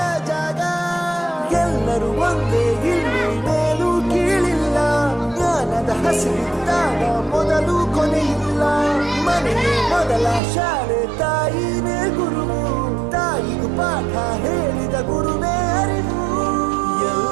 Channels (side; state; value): left; drops out; at 10.4 s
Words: ಜಾಗ. ಎಲ್ಲರೂ ಒಂದೇ, ಇಲ್ಲಿ ಮೇಲೂ ಕೀಳಿಲ್ಲ, ಜ್ಞಾನದ ಹಸಿವಿದ್ದಾಗ ಮೊದಲು ಕೊನೆಯಿಲ್ಲ. ಮನೆಯೇ ಮೊದಲ ಶಾಲೆ, ತಾಯಿನೇ ಗುರುವು, ತಾಯಿಗೂ ಪಾಠ ಹೇಳಿದ ಗುರುವೇ ಅರಿವು.